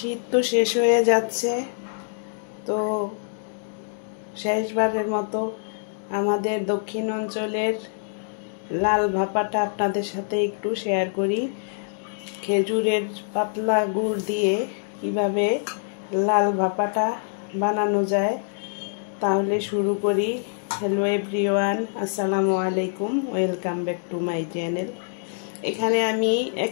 তো শেষ হয়ে যাচ্ছে, তো শেষবারের মতো আমাদের দক্ষিণ অঞ্চলের লাল ভাপাটা আপনাদের সাথে একটু শেয়ার করি। খেজুরের পাতলা গুড় দিয়ে কিভাবে লাল ভাপাটা বানানো যায়, তাহলে শুরু করি। হ্যালো এভরিওয়ান, আসসালামু আলাইকুম, welcome back to my channel. এখানে আমি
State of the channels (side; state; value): right; silent; digital silence